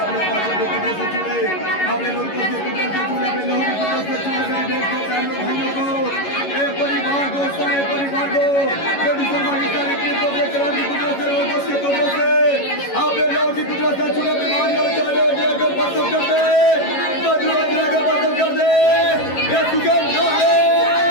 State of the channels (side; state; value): right; late; 11 ms